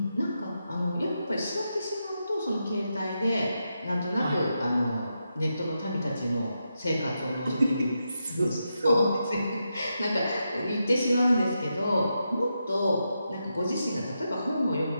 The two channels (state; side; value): inverted; both; correlation -0.86